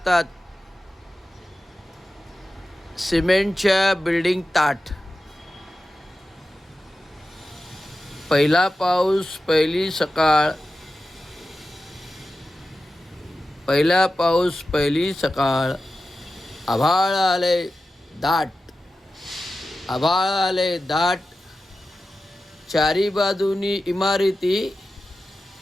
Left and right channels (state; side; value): normal; both; correlation 0.93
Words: सिमेंटच्या बिल्डिंग ताट. पहिला पाऊस पहिली सकाळ. पहिला पाऊस पहिली सकाळ. आभाळ आले दाट. आभाळ आले दाट. चारी बाजूनी इमारती